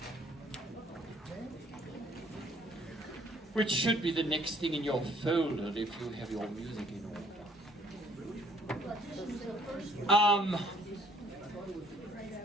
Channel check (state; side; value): normal; both; correlation 0.61